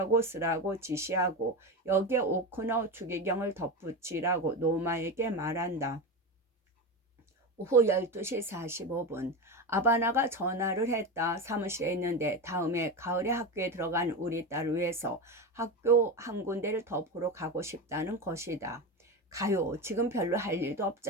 쓰라고 지시하고 여기에 오코너 추기경을 덧붙이라고 노마에게 말한다. 오후 12시 45분 아바나가 전화를 했다. 사무실에 있는데 다음에 가을에 학교에 들어간 우리 딸을 위해서 학교 한 군데를 더 보러 가고 싶다는 것이다. 가요. 지금 별로 할 일도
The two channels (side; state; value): both; normal; correlation 0.20